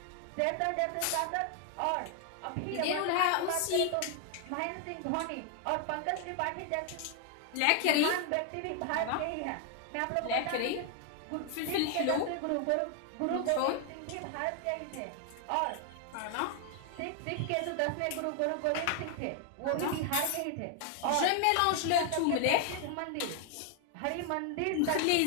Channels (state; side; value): different; both; correlation 0.00